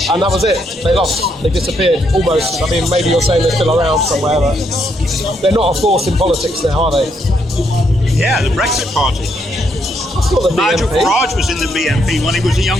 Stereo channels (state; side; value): normal; both; correlation 0.75